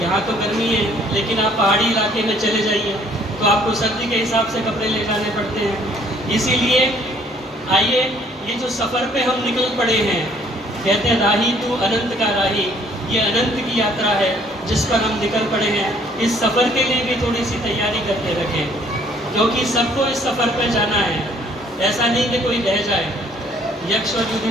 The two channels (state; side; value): normal; both; correlation 0.61